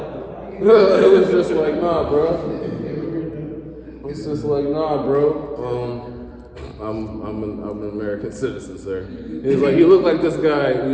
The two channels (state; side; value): identical; both; correlation 1.00